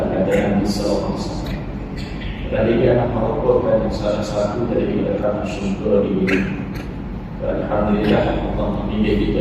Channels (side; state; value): both; identical; correlation 1.00